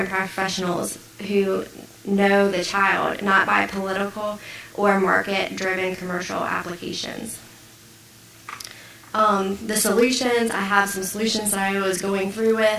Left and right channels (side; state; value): both; identical; correlation 1.00